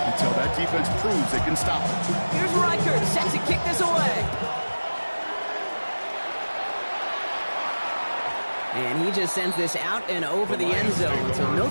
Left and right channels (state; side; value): inverted; both; correlation -1.00